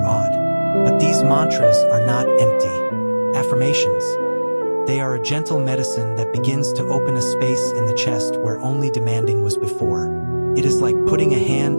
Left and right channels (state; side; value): inverted; both; correlation -1.00